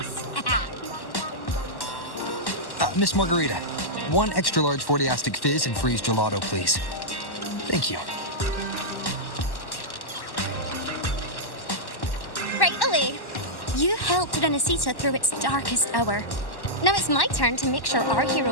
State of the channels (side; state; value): right; late; 1.1 ms